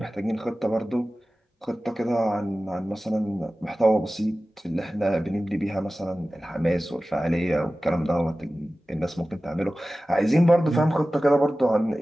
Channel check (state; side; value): normal; both; correlation 0.96